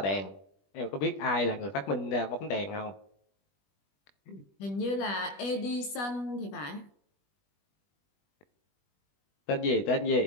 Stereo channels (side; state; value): right; late; 20 ms